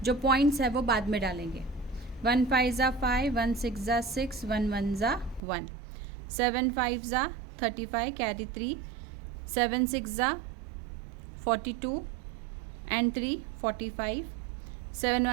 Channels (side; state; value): left; drops out; at 5.4 s